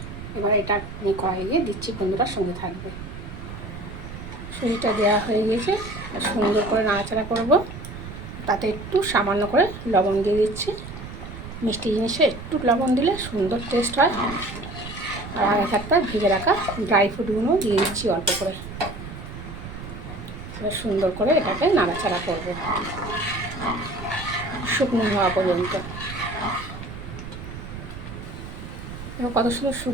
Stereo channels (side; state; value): right; noise; rumble, 11 dB below the sound